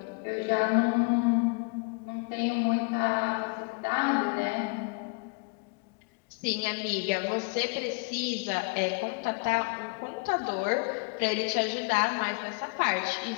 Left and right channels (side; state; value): right; quieter; 31.0 dB